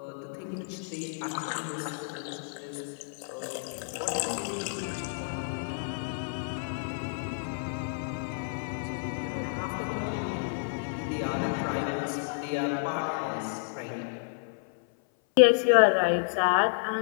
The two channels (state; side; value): silent; right; 56 dB below the other